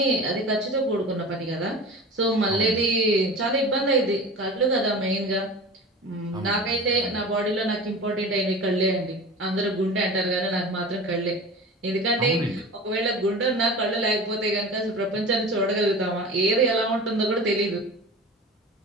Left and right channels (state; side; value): normal; both; correlation 0.35